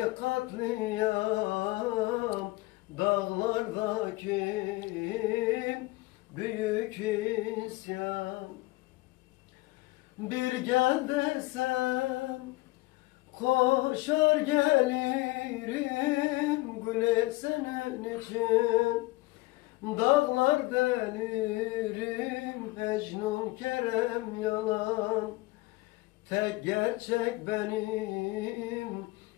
katliam, dağlardaki büyük isyan. Bir gel desem koşar gelirim, güle senin için dağlar delirim. Mecnun Kerem yalan, tek gerçek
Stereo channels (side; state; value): right; quieter; 21.2 dB